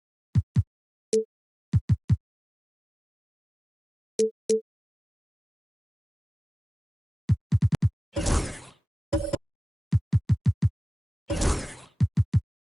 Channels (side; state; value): both; normal; correlation 0.97